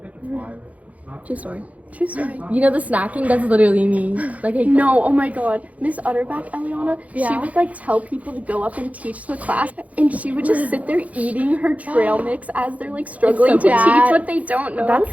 True story. True story. You know the snacking? That's literally me. Like, I No, oh my god. Miss Utterback, Eliana, she Yeah. would like tell people to go up and teach the class, and she would just sit there eating her trail mix as they're like struggling to bad. teach what they don't know.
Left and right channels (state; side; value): late; left; 0.069 ms